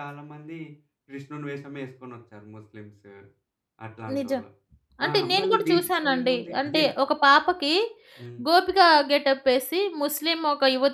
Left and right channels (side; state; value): both; identical; correlation 1.00